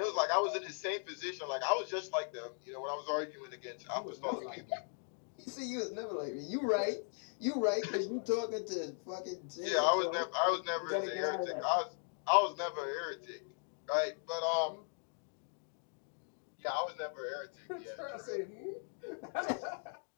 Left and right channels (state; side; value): silent; right; 52 dB below the other